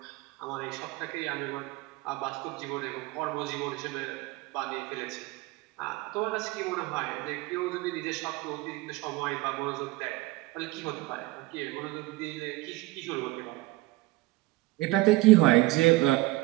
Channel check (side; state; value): left; quieter; 20.1 dB